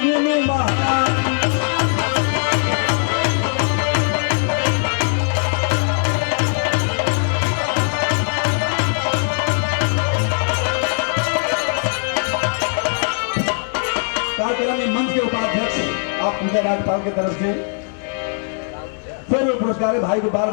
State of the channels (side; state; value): right; silent; 64 dB below the other